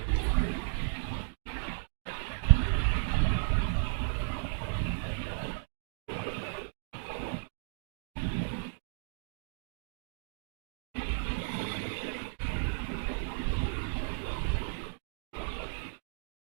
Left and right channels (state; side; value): silent; left; digital silence